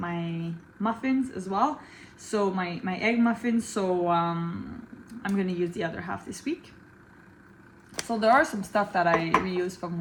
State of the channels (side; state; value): both; identical; correlation 1.00